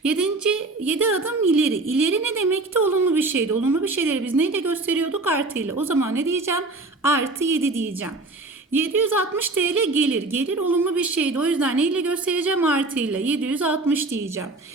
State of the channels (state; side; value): quieter; left; 3.2 dB